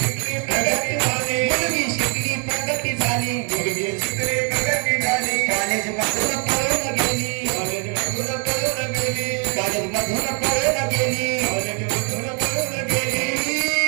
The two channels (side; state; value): left; quieter; 37.4 dB